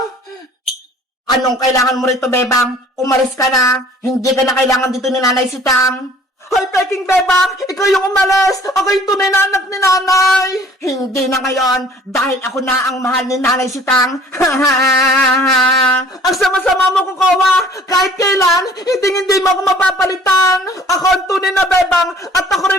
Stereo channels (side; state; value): both; normal; correlation 0.52